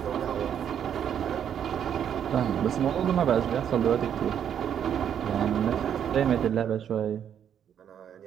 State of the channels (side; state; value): left; quieter; 9.0 dB